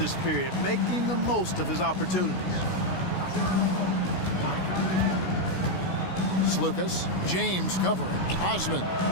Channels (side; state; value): right; late; 16 ms